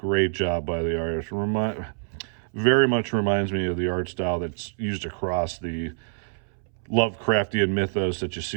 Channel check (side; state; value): left; silent; 61 dB below the other